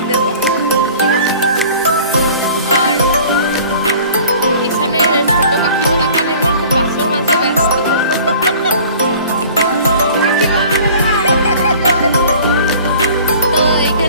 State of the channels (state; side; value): inverted; both; correlation -0.47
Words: দেবো, ঠিক আছে? আর এখানে ছোট কাকিমা তাকান একবার খুব বাস্তব মাঝে ব্যস্ত। তো